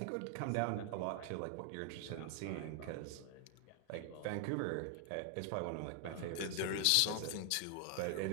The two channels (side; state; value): both; different; correlation 0.00